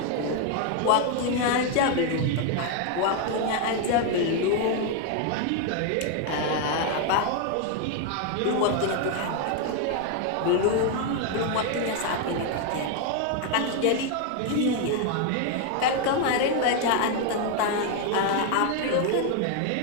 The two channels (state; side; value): different; both; correlation 0.01